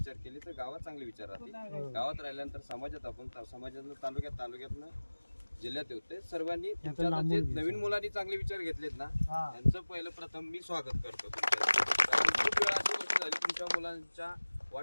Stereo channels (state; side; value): inverted; both; correlation -1.00